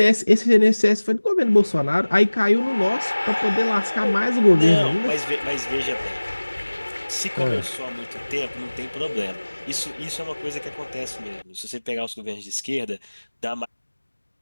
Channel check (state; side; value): inverted; both; correlation -1.00